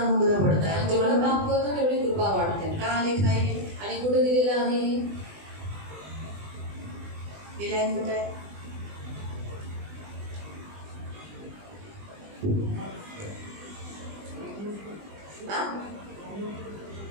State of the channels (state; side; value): late; left; 20 ms